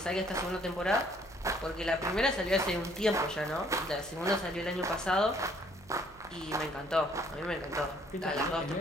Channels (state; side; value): noise; right; hum, 23 dB below the sound